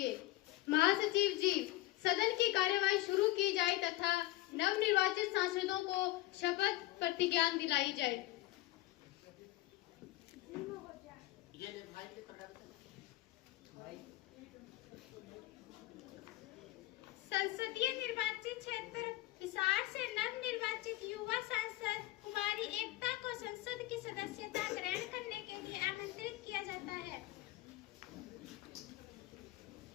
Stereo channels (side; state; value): right; quieter; 17.7 dB